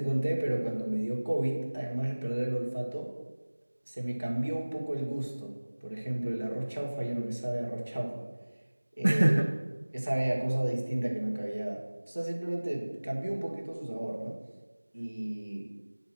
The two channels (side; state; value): both; inverted; correlation -1.00